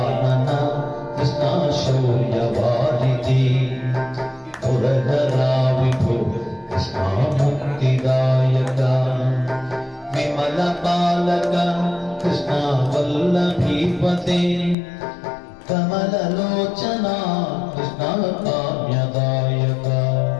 కృష్ణ శౌర్యవారిధి పురధరా విభో కృష్ణ ముక్తిదాయక విమల బాలక కృష్ణ వల్లభీపతే కమలలోచన కృష్ణ కామ్యదాయక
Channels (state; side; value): drops out; right; at 14.8 s